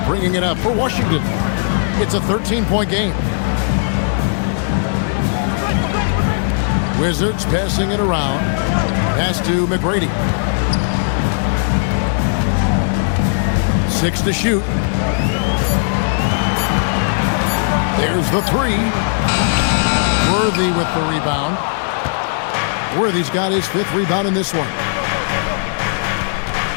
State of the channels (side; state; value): right; silent; 68 dB below the other